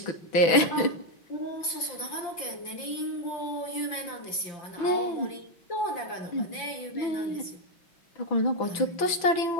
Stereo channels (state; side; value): late; right; 6.0 ms